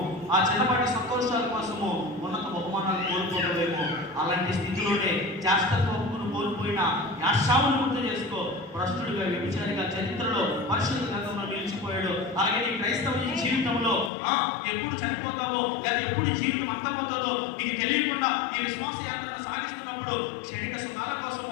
ఆ చిన్నపాటి సంతోషాల కోసము ఉన్నత బహుమానాలు కోల్పోవడమేమో, అలాంటి స్థితిలోనే జాస్తత్వమును కోల్పోయిన యాశావును గుర్తు చేసుకో. భ్రష్టుడిగా, వ్యభిచారిగా చరిత్రలో పరిశుద్ధ గ్రంథంలో నిలిచిపోయాడు. అలాగే నీ క్రైస్తవ జీవితంలో ఎప్పుడు చనిపోతావో లేదా ఎప్పుడు జీవితం అంతమవుతుందో నీకు తెలియకుండా ఈ విశ్వాస యాత్రను సాగిస్తున్నప్పుడు క్షణిక సుఖాల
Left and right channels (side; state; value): right; drops out; at 14.1 s